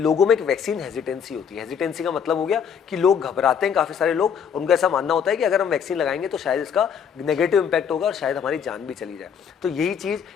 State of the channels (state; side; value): quieter; right; 7.4 dB